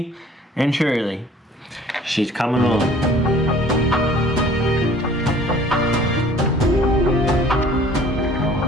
and surely. She's coming along.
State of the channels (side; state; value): both; normal; correlation 0.52